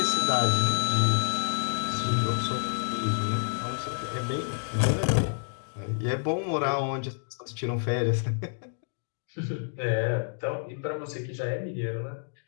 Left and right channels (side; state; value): right; silent; digital silence